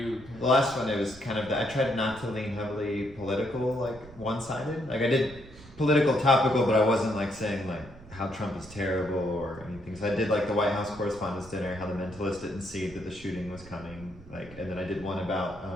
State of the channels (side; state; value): right; noise; rumble, 19 dB below the sound